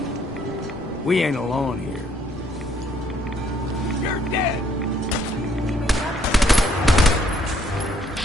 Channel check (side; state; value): both; normal; correlation 0.67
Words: We ain't alone here. You're dead!